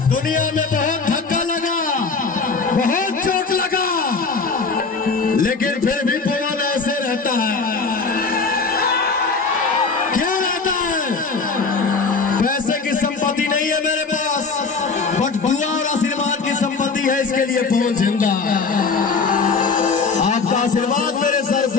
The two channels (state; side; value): quieter; right; 4.6 dB